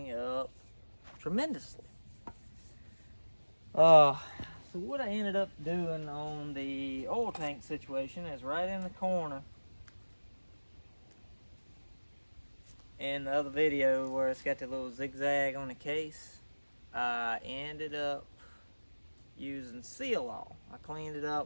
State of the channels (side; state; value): both; inverted; correlation -1.00